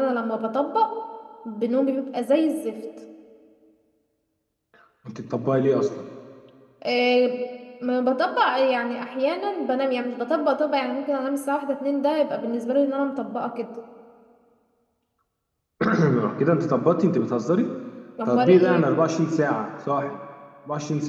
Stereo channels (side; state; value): both; identical; correlation 1.00